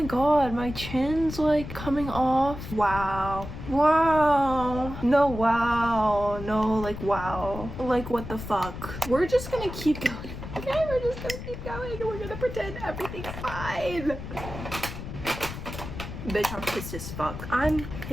god, my chin's like coming off. Wow. No, wow. No, like, wow. Like, what the fuck? We're just gonna keep going. Okay, we're just gonna keep going and we're gonna pretend everything's fine. Bitch, I'm pissed as fuck. I'm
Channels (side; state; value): left; noise; rumble, 9 dB below the sound